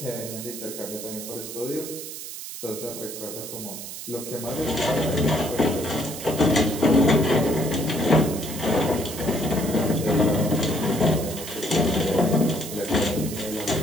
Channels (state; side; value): noise; right; hiss, 9 dB below the sound